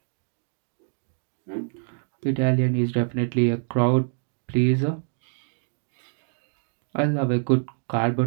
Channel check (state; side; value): silent; left; digital silence